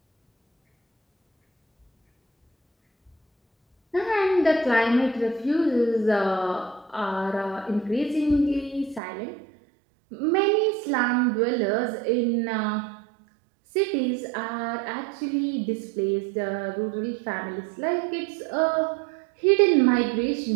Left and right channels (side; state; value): left; drops out; at 9.0 s